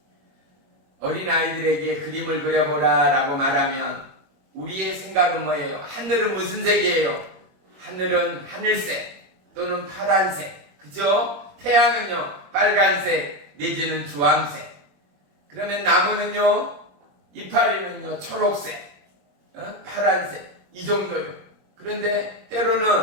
어린아이들에게 그림을 그려보라 라고 말하면 우리의 생각은 뭐예요? 하늘은 무슨 색이에요? 하늘은 하늘색 또는 파란색, 그죠? 태양은요 빨간색 내지는 주황색. 그러면 나무는요 이파리는요 초록색, 파란색, 이 정도요. 그런데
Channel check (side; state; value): left; late; 21 ms